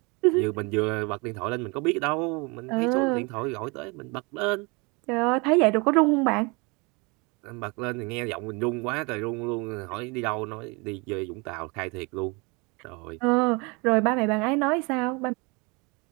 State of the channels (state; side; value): quieter; left; 28.9 dB